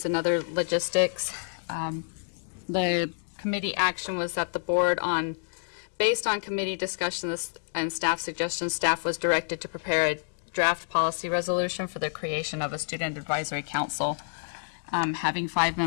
and other logistics. The committee action was that the board, based on committee discussions and staff suggestions, staff was directed to prepare a draft policy resolution for the creation of a student advisory council, having 5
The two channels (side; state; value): right; silent; digital silence